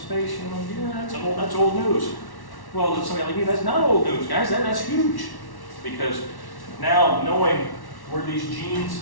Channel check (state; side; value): late; right; 1.1 ms